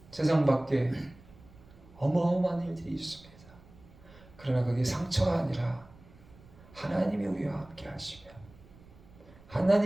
세상 밖에 어마어마한 일들이 있습니다. 그러나 그게 상처가 아니라 하나님이 우리와 함께 하시면,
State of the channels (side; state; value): right; noise; rumble, 23 dB below the sound